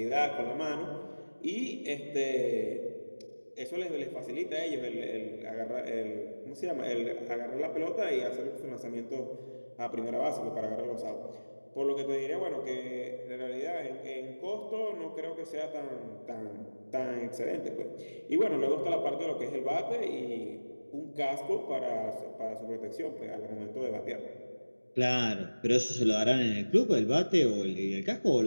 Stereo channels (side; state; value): both; inverted; correlation -1.00